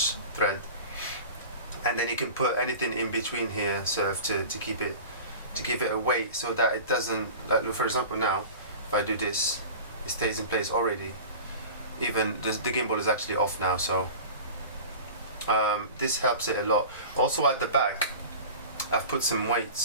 thread. And then you can put anything in between here sort of to keep it, to give it a weight, so that it doesn't, like for example now, if I do this, it stays in place already. Even the gimbal is actually off now, so this helps it a lot. Also at the back, I've put some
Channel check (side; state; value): both; inverted; correlation -0.36